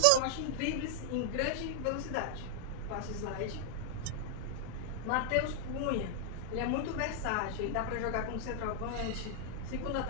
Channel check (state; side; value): different; both; correlation -0.01